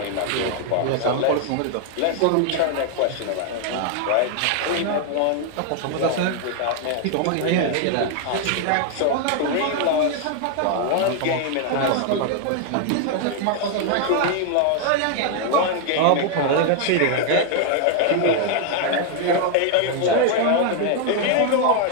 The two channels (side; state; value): both; different; correlation 0.00